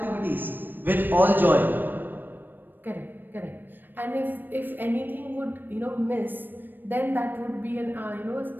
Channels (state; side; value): late; left; 0.092 ms